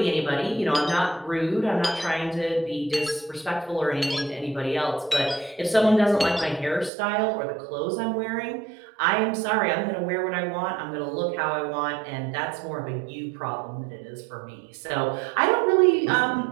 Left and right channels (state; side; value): drops out; left; at 6.9 s